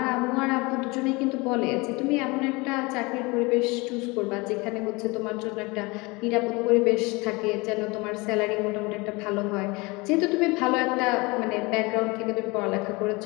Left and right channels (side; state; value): right; quieter; 25.3 dB